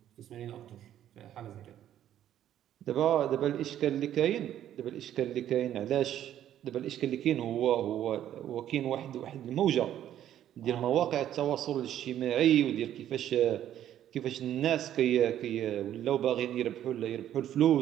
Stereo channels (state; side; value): quieter; left; 11.3 dB